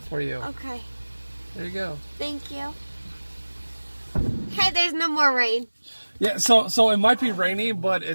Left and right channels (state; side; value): inverted; both; correlation -1.00